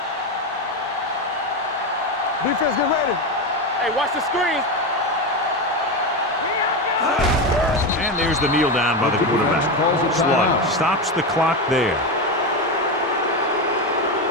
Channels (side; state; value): both; normal; correlation 0.15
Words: Defense, get ready. Hey, watch the screens. And there's the kneel down by the quarterback. Slug stops the clock there.